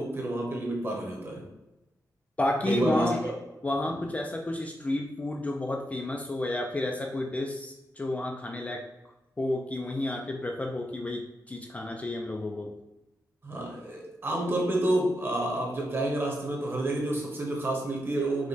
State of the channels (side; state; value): both; normal; correlation 0.84